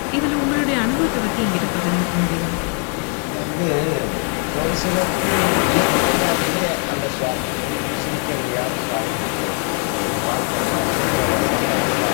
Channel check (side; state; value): right; quieter; 39.9 dB